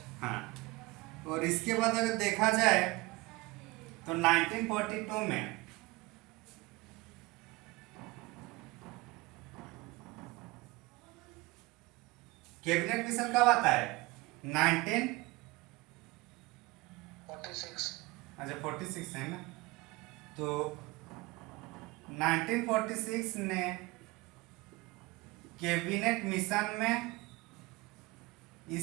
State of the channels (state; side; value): quieter; left; 22.3 dB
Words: हाँ। और इसके बाद अगर देखा जाए तो 1942 में कैबिनेट मिशन कब आता है? 1946। अच्छा, 46 है ना? तो 1946 ने कैबिनेट मिशन में